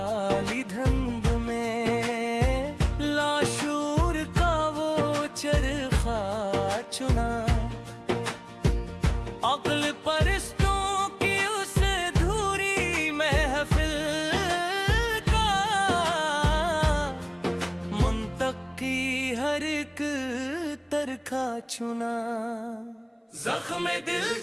धंध में लाशूर का वो चरखा चुना। अक्ल परस्तों की उस धूरी महफिल का मुंतकी हर एक तरखा चुना। जख्म दिल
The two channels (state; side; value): identical; both; correlation 1.00